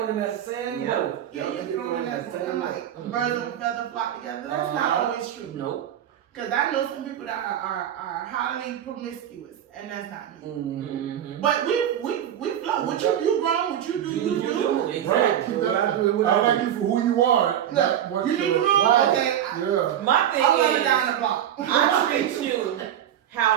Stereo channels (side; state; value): left; quieter; 10.5 dB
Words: in that sand Yep. boat. Yeah, you get thrown in that boat. I'm like, birds of a feather flock together. That's not always true. Nope. Because I know some people that are highly promiscuous, and that's not me. Mm-hmm. But we flow. What you grown, what you do, you do. Right. Exactly. Keep that. I like you for who you are. not what You need you're- to know. Right. Okay, Yeah. My thing I'm running is, down the block. I treat you